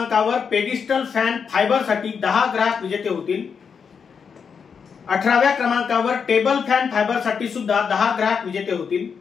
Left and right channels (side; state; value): right; quieter; 6.3 dB